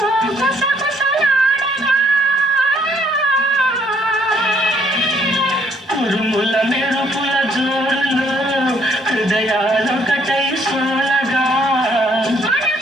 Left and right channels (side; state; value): both; normal; correlation 0.67